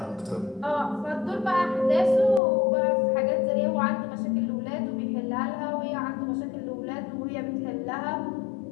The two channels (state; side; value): drops out; right; at 2.4 s